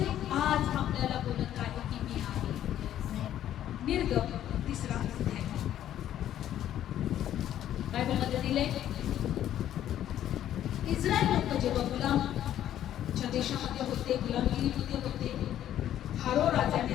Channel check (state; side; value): quieter; right; 11.5 dB